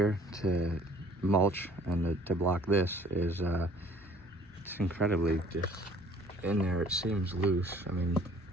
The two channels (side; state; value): both; normal; correlation 0.54